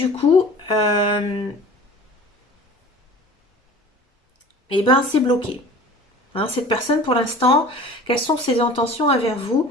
coup, eh ben c'est bloqué. Hein, cette personne, pour l'instant, quelles sont ses intentions envers vous?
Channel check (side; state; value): both; normal; correlation 0.42